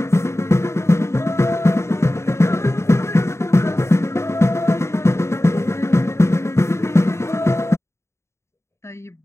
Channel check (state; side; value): late; right; 0.13 ms